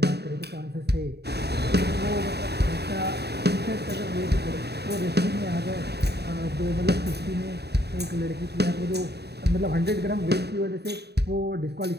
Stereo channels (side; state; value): left; late; 0.48 ms